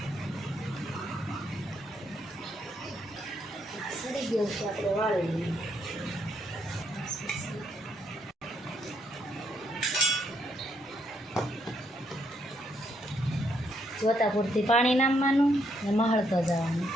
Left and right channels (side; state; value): both; normal; correlation 0.74